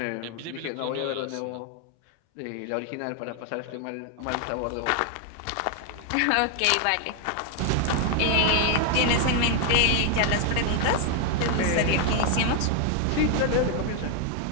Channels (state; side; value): different; both; correlation 0.00